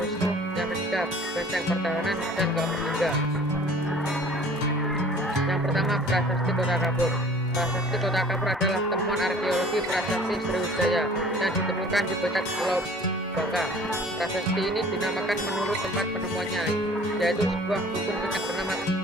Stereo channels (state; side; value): normal; both; correlation 0.49